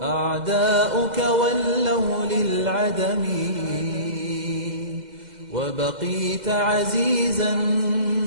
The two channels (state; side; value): late; left; 2.0 ms